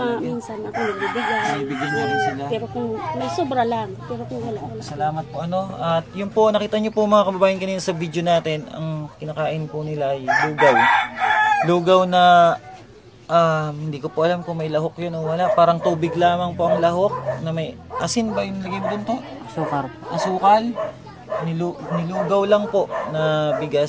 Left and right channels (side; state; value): both; identical; correlation 1.00